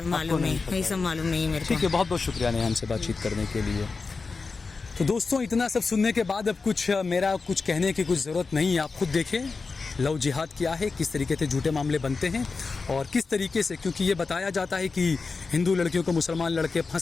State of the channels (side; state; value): right; quieter; 4.4 dB